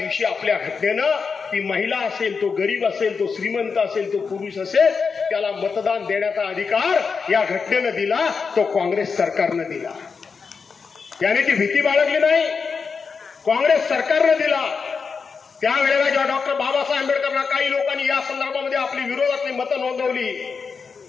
आपल्या घटनेनं ती महिला असेल, तो गरीब असेल, तो श्रीमंत असेल, तो पुरुष असेल, त्याला मतदान देण्याचा अधिकार या घटनेनं दिला. तो काँग्रेस सरकारनं दिला. त्याने ती भीती बाळगली नाही, काँग्रेस सरकारनं दिला. त्यावेळेला जेव्हा डॉक्टर बाबासाहेब आंबेडकरांना काही लोकांनी या संदर्भामध्ये आपली विरोधातली मतं नोंदवली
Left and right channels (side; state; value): right; quieter; 5.3 dB